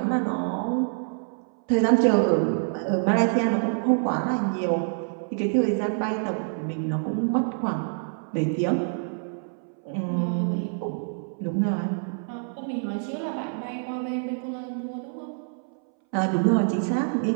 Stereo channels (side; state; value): left; silent; 61 dB below the other